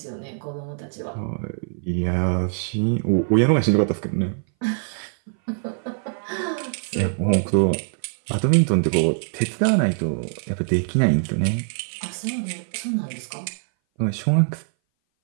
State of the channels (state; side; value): silent; left; 59 dB below the other